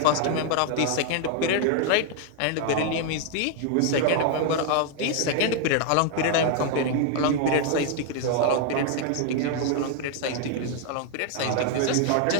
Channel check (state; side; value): different; both; correlation 0.00